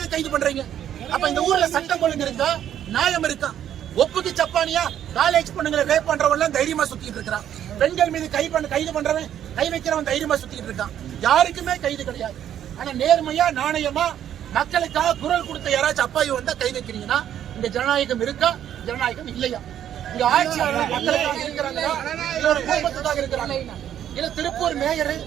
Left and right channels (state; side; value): quieter; left; 10.4 dB